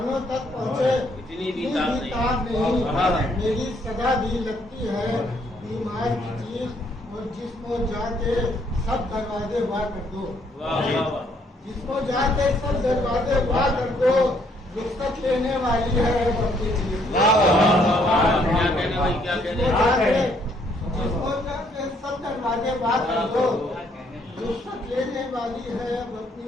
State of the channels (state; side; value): normal; both; correlation 0.68